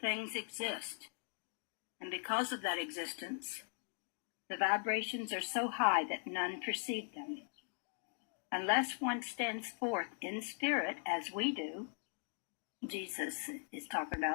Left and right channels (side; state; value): right; silent; 51 dB below the other